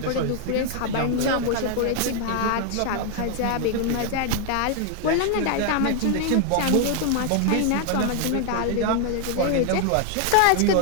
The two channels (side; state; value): both; different; correlation 0.00